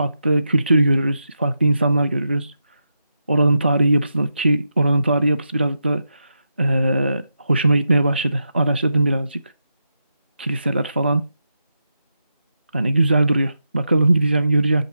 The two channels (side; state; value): both; inverted; correlation -0.86